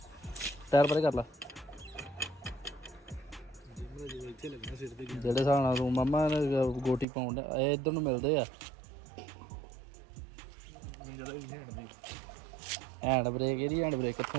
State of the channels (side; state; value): left; drops out; at 7.1 s